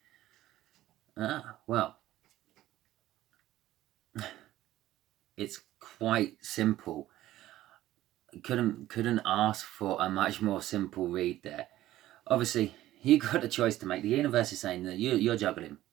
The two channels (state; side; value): quieter; left; 14.7 dB